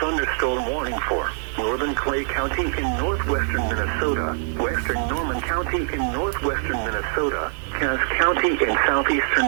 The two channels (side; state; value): left; silent; 59 dB below the other